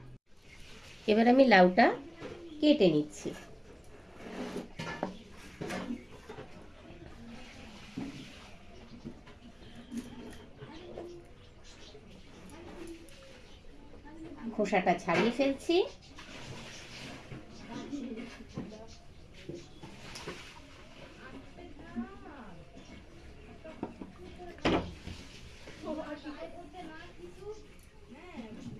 এবার আমি লাউটা কেটে নিচ্ছি। খোসাটা ছাড়িয়ে ফেলছি।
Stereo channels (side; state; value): both; identical; correlation 1.00